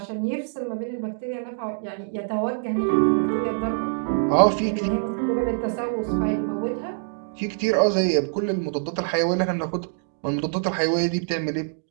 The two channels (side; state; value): left; silent; digital silence